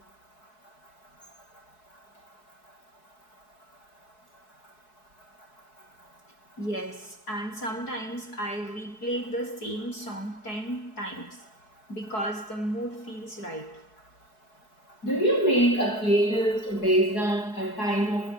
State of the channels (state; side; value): late; right; 4.7 ms